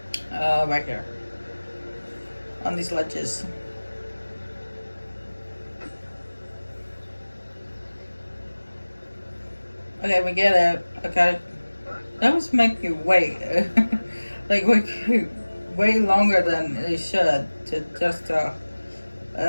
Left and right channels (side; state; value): both; inverted; correlation -1.00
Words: right here on these ledges. Okay, we get it. Okay. That was make you wait. Like, way longer than it should to